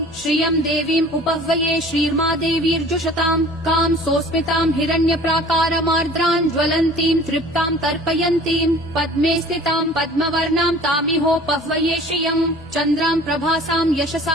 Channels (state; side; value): normal; both; correlation 0.47